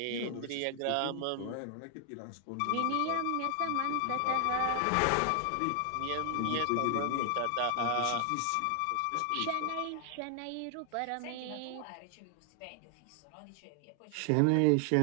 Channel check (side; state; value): both; different; correlation 0.00